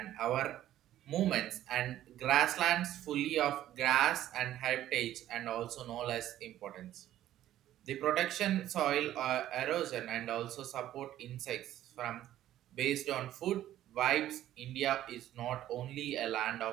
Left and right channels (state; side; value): quieter; left; 12.9 dB